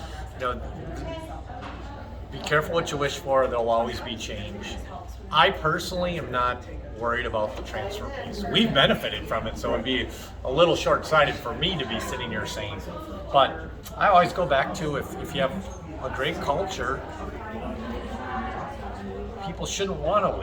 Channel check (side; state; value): both; identical; correlation 1.00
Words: be careful what you wish for, there'll always be change. I personally am not worried about the transfer piece. We've benefited from it, so it'd be a little short-sighted for me to be sitting here saying. But I always go back to if you have a great culture, people shouldn't want to